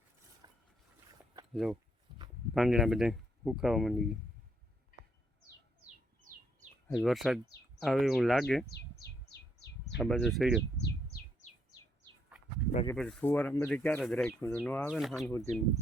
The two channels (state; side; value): normal; both; correlation 0.73